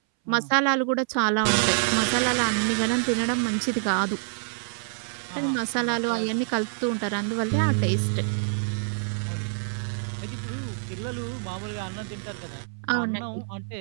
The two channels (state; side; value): silent; left; 61 dB below the other